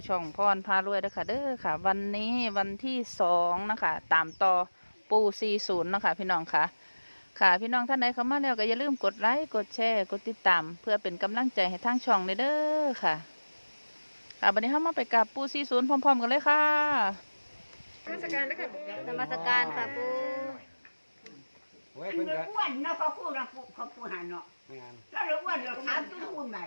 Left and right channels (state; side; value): inverted; both; correlation -1.00